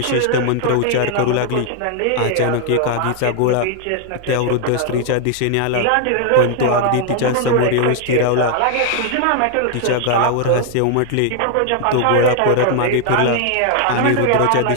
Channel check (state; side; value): different; both; correlation 0.00